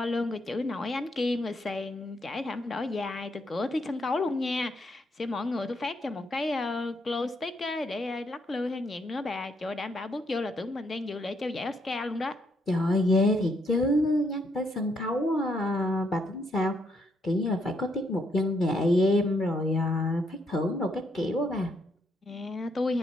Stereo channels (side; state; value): both; normal; correlation 0.75